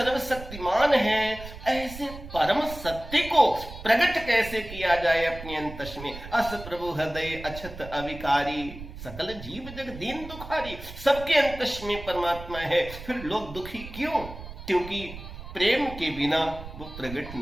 है। ऐसे परम सत्य को प्रकट कैसे किया जाए अपने अंतस में? अस प्रभु हृदय अछत अविकारी, सकल जीव जग दीन दुखारी। सबके अंतस में परमात्मा है, फिर लोग दुखी क्यों? क्योंकि प्रेम के बिना वो प्रकट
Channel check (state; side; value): noise; right; rumble, 13 dB below the sound